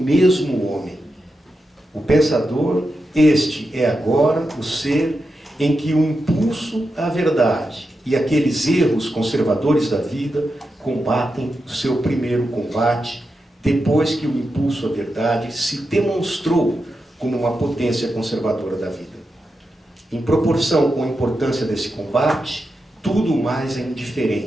homem. O pensador, este é agora o ser em que o impulso à verdade e aqueles erros conservadores da vida combatem o seu primeiro combate, depois que o impulso à verdade se demonstrou como uma potência conservadora da vida. Em proporção com a importância desse combate, tudo mais é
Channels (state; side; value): normal; both; correlation 0.88